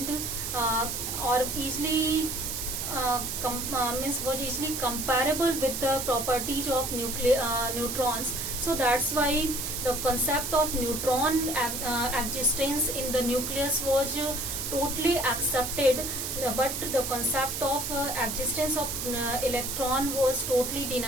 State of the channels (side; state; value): right; noise; hiss, 3 dB below the sound